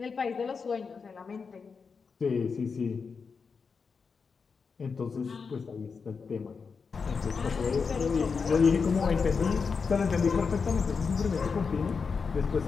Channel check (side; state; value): right; quieter; 5.3 dB